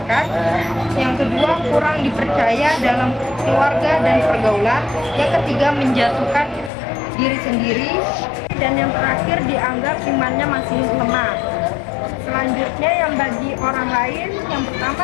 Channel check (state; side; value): drops out; right; at 6.7 s